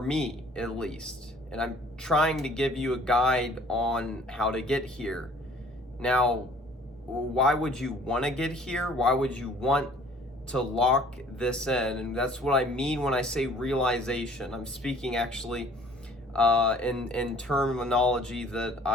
at least. And I'm trying to give you a guide on how to get here. Now, why would you want to get here? Why would you want to lock this in? And that's what I mean when I say realization. I'm speaking actually in terminology that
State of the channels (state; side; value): normal; both; correlation 0.53